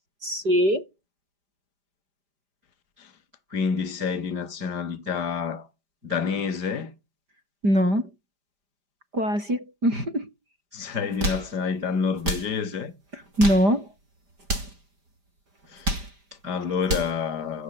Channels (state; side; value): late; left; 5.0 ms